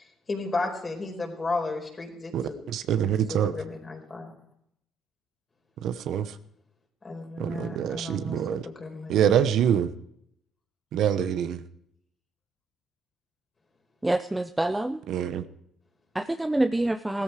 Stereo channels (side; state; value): left; quieter; 4.9 dB